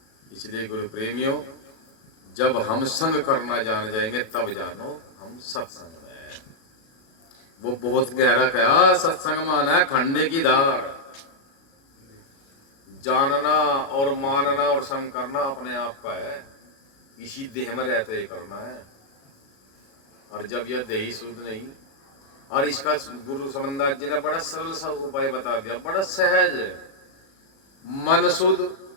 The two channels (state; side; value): late; right; 36 ms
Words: इसलिए गुरु प्रेमियों जब हम संग करना जान जाएंगे तब जानो हम सत्संग में हैं। वो बहुत गहरा कहा सत्संग माना है खंडे की धार। जानना और मानना और संग करना अपने आप का है। इसी देह में रहते ही करना है। और जब यह देही शुद्ध नहीं और इसका गुरु समनदास जी ने बड़ा सरल सा उपाय बता दिया बड़ा सहज है। मन शुद्ध